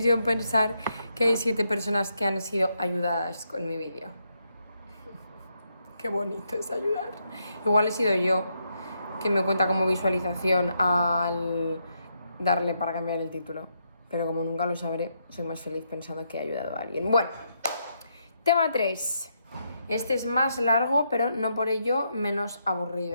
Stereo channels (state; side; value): inverted; both; correlation -0.79